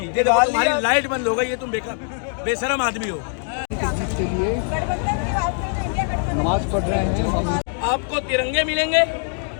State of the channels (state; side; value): silent; right; 64 dB below the other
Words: ये देखो तुम्हारी लाइट बंद हो गई है, तुम बेशरम आदमी हो। के लिए नमाज पढ़ रहे हैं हम। आपको तिरंगे मिलेंगे,